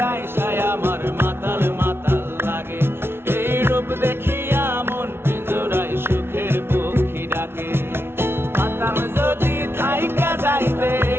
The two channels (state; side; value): late; left; 0.12 ms